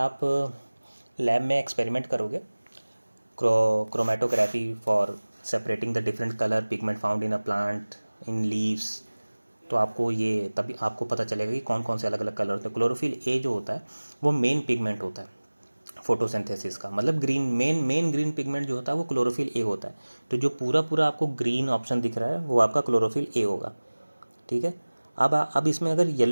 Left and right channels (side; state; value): both; inverted; correlation -1.00